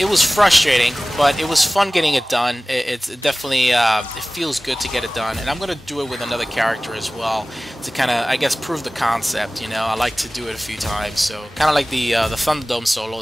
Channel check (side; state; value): both; normal; correlation 0.98